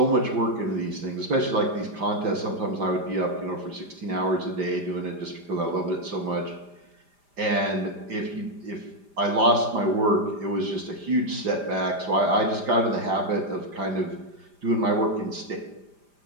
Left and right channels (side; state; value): left; late; 5.0 ms